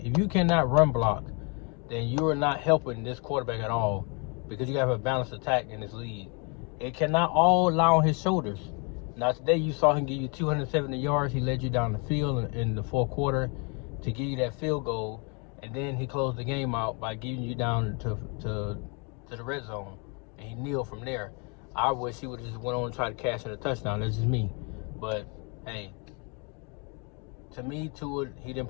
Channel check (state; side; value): quieter; right; 34.2 dB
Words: cannot run block, then you are not helping this quarterback at all, because you have a balanced attack in this league. It cannot all lie on his shoulders. Now, today you saw him give you 270 yards. He led you down the field in the 4th quarter to give you that field goal, and then he closed the game out by getting you down to the red zone, and he kneeled from there. I wish he would have just went on and tried to cash in a touchdown. That's just me. But, hey, to me, Tua, he didn't